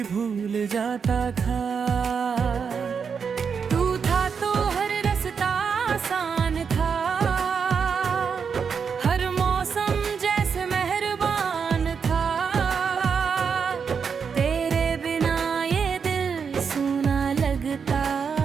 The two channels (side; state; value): left; quieter; 6.2 dB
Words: भूल जाता था। तू था तो हर रास्ता आसान था, हर मौसम जैसे मेहरबान था। तेरे बिना ये दिल सूना लगता,